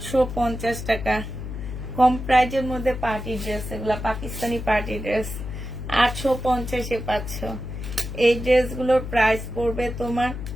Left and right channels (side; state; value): left; noise; hum, 7 dB below the sound